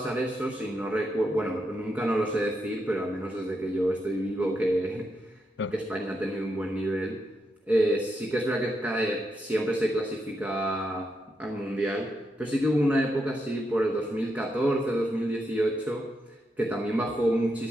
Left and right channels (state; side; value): normal; both; correlation 0.82